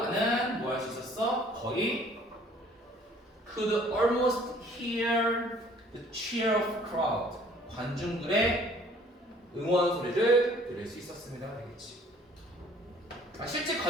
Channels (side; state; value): both; normal; correlation 0.56